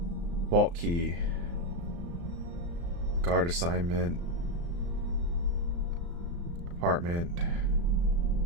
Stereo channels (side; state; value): left; late; 35 ms